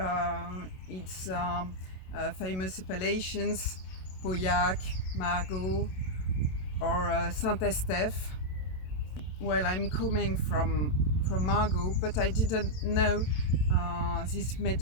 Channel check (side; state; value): right; late; 27 ms